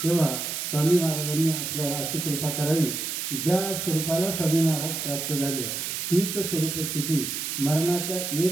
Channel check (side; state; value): right; noise; hiss, 3 dB below the sound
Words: तेव्हा स्वामी महाराजांनी आपल्याला अशी कृपा करावी की ज्या स्वरूपाला स्वामी महाराज प्राप्त झाले तीच स्वरूप स्थिती मरणाच्या